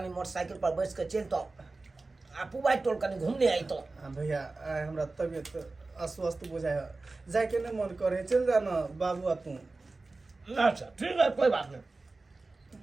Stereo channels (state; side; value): quieter; left; 3.5 dB